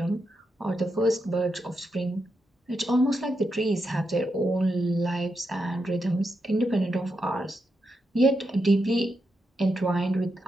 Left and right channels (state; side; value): normal; both; correlation 0.84